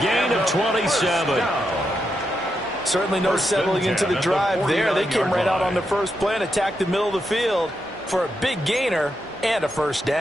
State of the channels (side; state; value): right; noise; hum, 29 dB below the sound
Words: gain of 27. Certainly no settling into the drive there. They came right out on the first play and attacked the middle of the field for a big gainer and a first